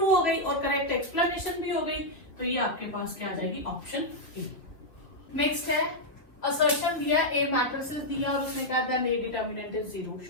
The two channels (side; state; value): right; late; 3.1 ms